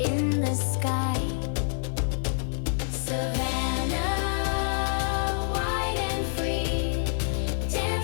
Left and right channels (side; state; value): right; silent; 60 dB below the other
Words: the sky. Savanna, wide and free,